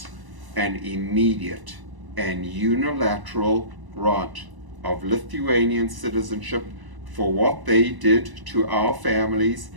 an immediate and unilateral grant of Lithuanian citizenship for what they did to our families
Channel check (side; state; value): left; late; 1.0 ms